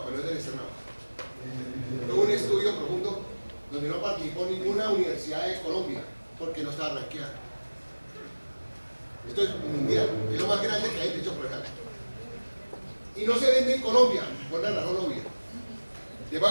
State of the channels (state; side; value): inverted; both; correlation -1.00